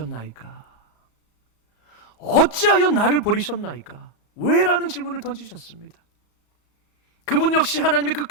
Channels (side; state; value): right; late; 34 ms